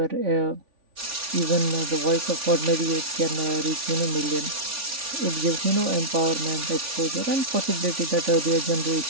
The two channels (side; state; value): left; late; 3.5 ms